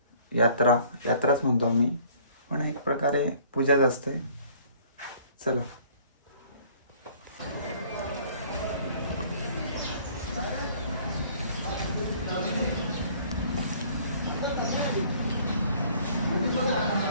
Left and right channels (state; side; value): inverted; both; correlation -0.55